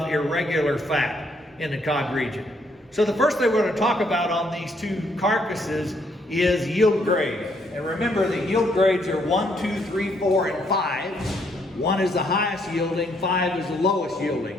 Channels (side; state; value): both; normal; correlation 0.71